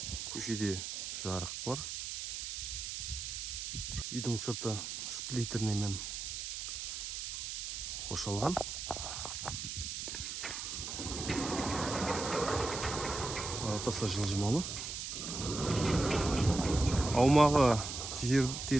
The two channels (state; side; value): noise; right; hiss, 5 dB below the sound